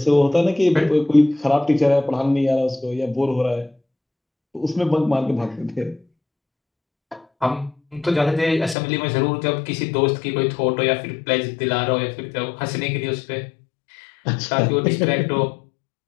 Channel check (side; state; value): right; drops out; at 8.8 s